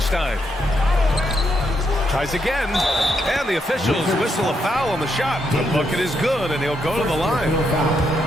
Tries again, and the officials whistle a foul on the shot. The bucket is good, and he'll go to the line.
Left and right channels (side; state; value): both; normal; correlation 0.79